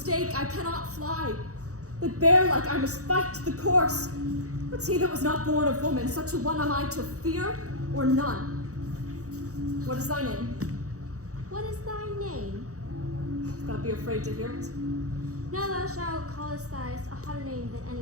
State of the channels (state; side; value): late; left; 0.65 ms